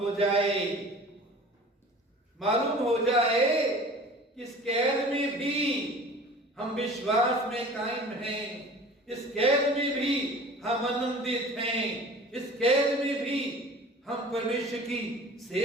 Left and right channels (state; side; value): normal; both; correlation 0.43